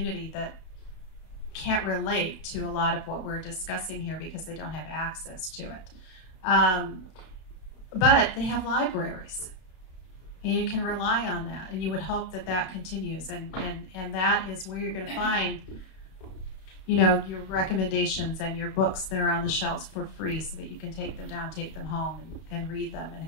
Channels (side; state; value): right; late; 32 ms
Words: that can't relate to a lot of what we're discussing here because they don't have access to it. But they have libraries. And you can rely on that, and you would hope that that continues, and that is where you're going to find, you know, your recommendations and your books that are on the shelves for free, so that you can take them down, take them home, and read them and